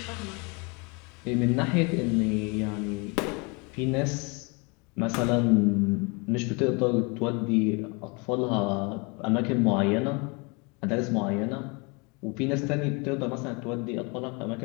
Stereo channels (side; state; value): right; quieter; 30.5 dB